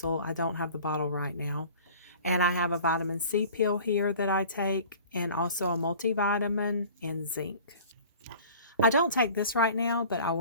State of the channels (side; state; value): both; inverted; correlation -0.45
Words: I don't have the bottle right now. And I have a vitamin C pill here that I take, and also a multivitamin and zinc. I don't take this right now, but I